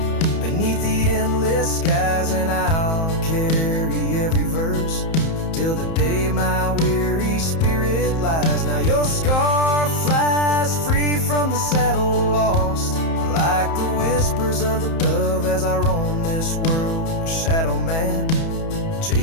beneath the endless skies, and I'll carry every verse till the day my weary spirit lies. Now your scarf flies free from the saddle, lost like the whispers of the dove, as I roam this world, a shadow man,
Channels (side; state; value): right; late; 31 ms